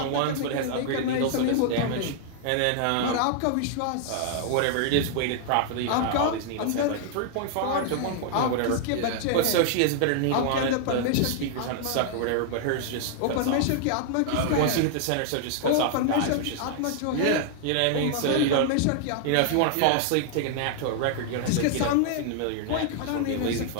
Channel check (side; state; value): both; different; correlation 0.00